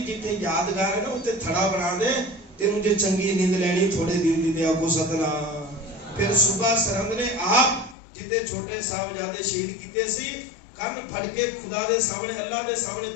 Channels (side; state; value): right; drops out; at 8.0 s